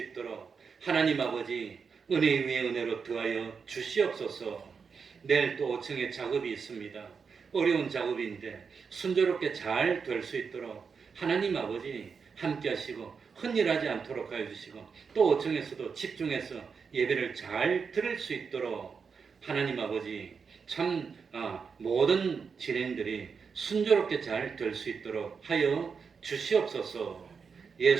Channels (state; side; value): quieter; left; 5.7 dB